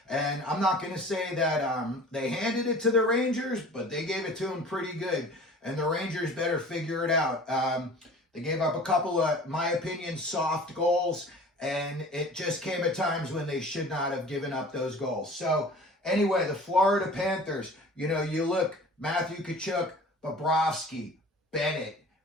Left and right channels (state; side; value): normal; both; correlation 0.43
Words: And I'm not going to say that they handed it to the Rangers, but they gave it to them pretty good. And the Rangers better figure it out. They gave up a couple of, my opinion, soft goals, and it just came at times when they should not have given up those goals. So anyway, the Florida Panthers, you know, you look, Matthew Tkachuk, Bobrovsky, Bennett,